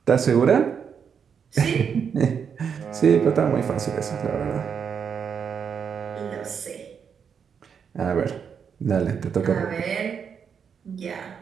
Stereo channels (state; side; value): quieter; left; 7.0 dB